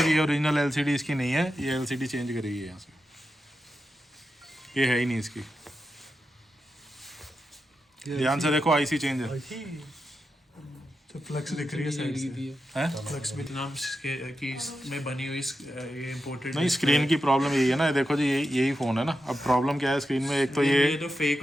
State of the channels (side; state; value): both; normal; correlation 0.89